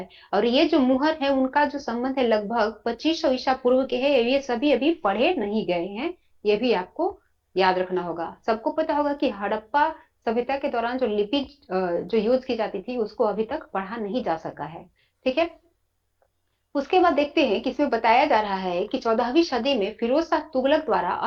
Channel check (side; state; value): both; identical; correlation 1.00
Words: और ये जो मुहर है उनका जो संबंध है लगभग 2500 ईसा पूर्व के है, ये सभी अभी पढ़े नहीं गए हैं, ये भी आपको याद रखना होगा। सबको पता होगा कि हड़प्पा सभ्यता के दौरान जो लिपि जो यूज की जाती थी उसको अभी तक पढ़ा नहीं जा सका है। ठीक है, उसके बाद देखते हैं कि इसमें बताया जा रहा है कि 14वीं सदी में फिरोज शाह तुगलक द्वारा